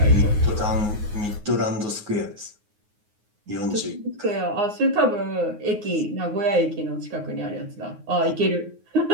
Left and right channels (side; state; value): left; late; 9.5 ms